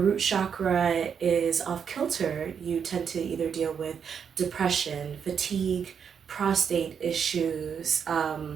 chakra is off kilter, you tend to either deal with depression, fatigue, prostate issues,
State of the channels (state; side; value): quieter; left; 7.2 dB